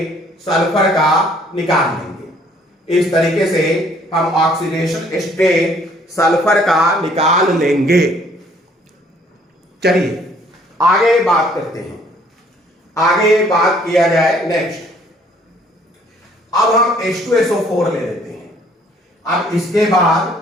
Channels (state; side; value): normal; both; correlation 0.61